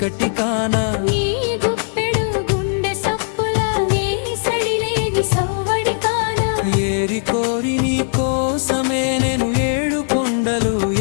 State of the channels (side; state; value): right; silent; 61 dB below the other